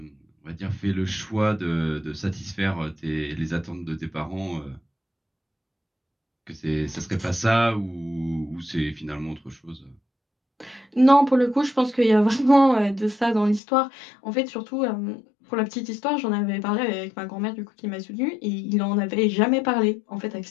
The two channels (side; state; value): right; drops out; at 13.6 s